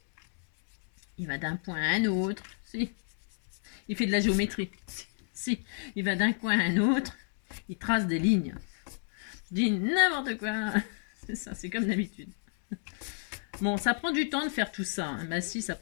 Il va d'un point à un autre. Si. Il fait de la géométrie. Si. Il va d'un coin à un autre. Il trace des lignes. Je dis n'importe quoi. C'est ça, c'est comme d'habitude. Bon, ça prend du temps de faire tout ça. Hein. Bah si, ça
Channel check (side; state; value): right; silent; digital silence